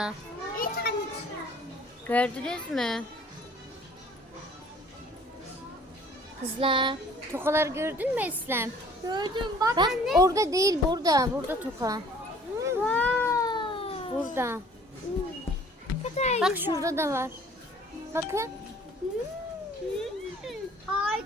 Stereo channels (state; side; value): normal; both; correlation 0.54